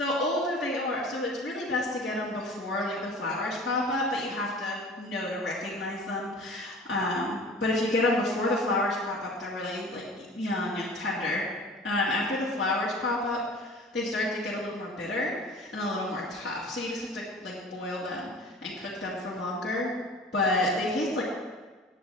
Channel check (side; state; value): both; normal; correlation 0.42